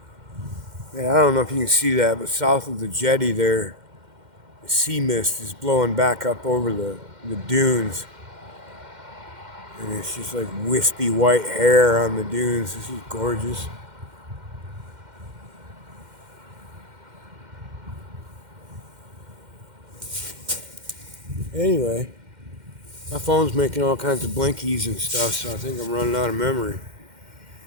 Yeah, I don't know if you can see that, but south of the jetty there, the sea mist is blowing back up over the dunes. And it's just like wispy white hair on the dunes. This is gorgeous. Anyway, my phone's making all kinds of blinkies and stuff, so I think I'm running out of memory.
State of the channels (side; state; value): left; late; 2.1 ms